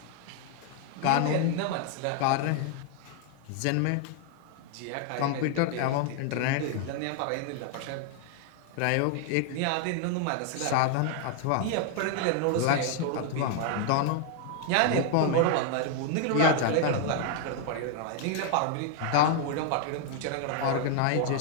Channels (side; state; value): both; different; correlation 0.00